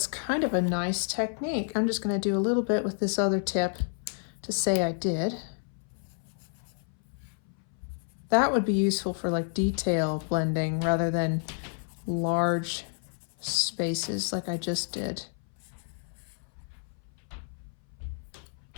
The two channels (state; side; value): silent; right; 58 dB below the other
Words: kind of a nice technique. I'm just going to do a little bit with this other tip to say I did. That would be useful for like detail blending rather than large spaces like I just did.